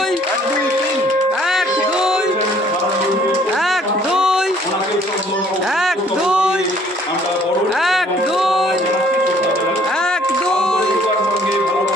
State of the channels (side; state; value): both; normal; correlation 0.59